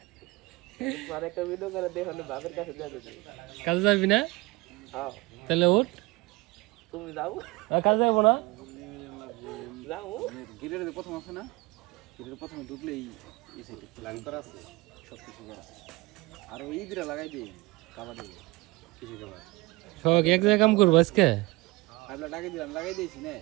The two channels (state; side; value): quieter; left; 22.7 dB